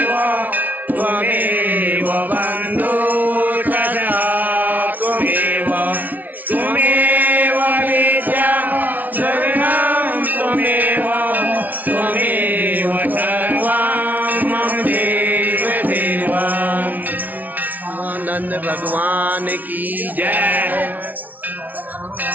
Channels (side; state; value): left; late; 0.077 ms